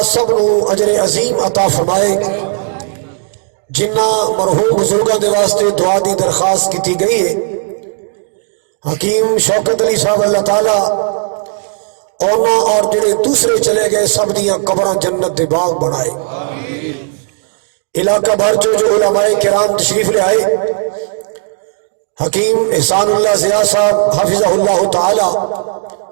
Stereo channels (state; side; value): silent; left; 70 dB below the other